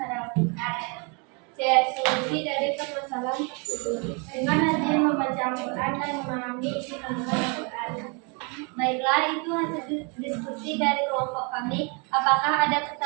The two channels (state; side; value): quieter; left; 33.8 dB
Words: pada Al-Quran. C. Solusi dari permasalahan tersebut. Dengan rajin membaca Al-Quran dan memahami isi kandungan Al-Quran. Baiklah, itu hasil diskusi dari kelompok kami. Apakah ada